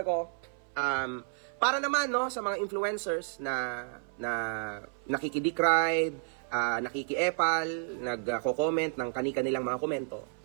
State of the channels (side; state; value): left; silent; 57 dB below the other